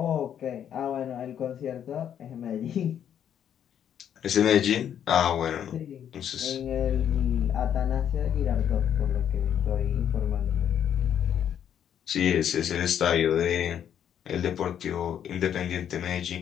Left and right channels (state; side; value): quieter; right; 9.3 dB